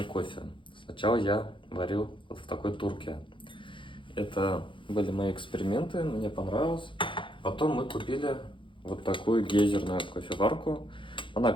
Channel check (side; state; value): right; late; 0.24 ms